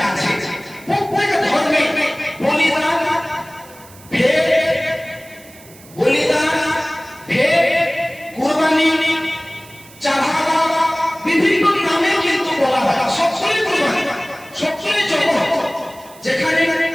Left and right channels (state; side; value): noise; right; hiss, 22 dB below the sound